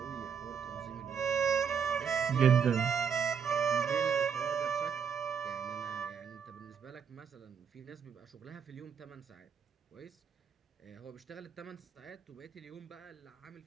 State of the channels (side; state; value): left; quieter; 6.9 dB